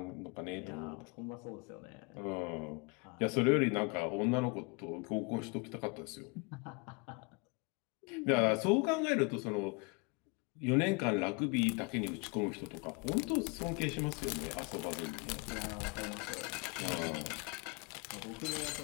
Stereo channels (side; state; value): right; quieter; 30.3 dB